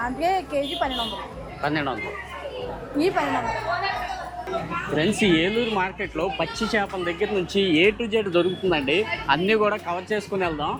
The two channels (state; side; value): identical; both; correlation 1.00